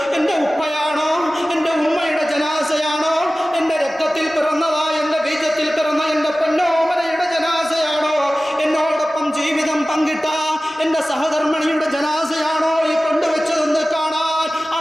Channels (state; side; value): normal; both; correlation 0.97